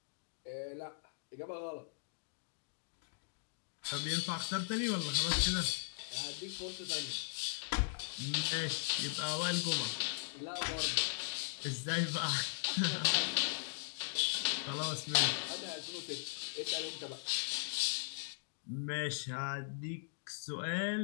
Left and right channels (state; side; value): silent; right; digital silence